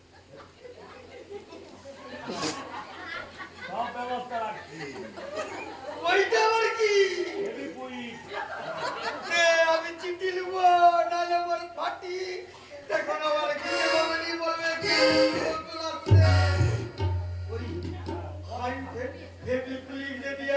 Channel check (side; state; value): both; identical; correlation 1.00